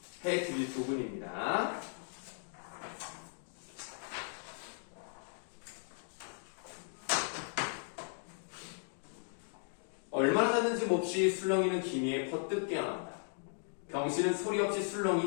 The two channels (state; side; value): silent; right; 53 dB below the other